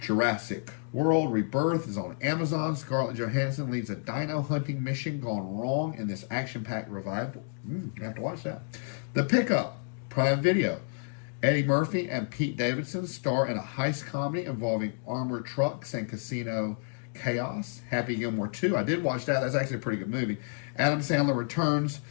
Jurassic World Rebirth is on Amazon. Scarlett Johansson leads a dino hunting mission gone wrong in this action-packed revival. You have to watch that. The Pickup, Prime Video. Eddie Murphy and Pete Davidson star in a heist comedy involving armored trucks and casino chaos. Happy Gilmore 2. I did watch that. That's actually a pretty good movie. Adam Sandler returns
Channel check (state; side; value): silent; right; 58 dB below the other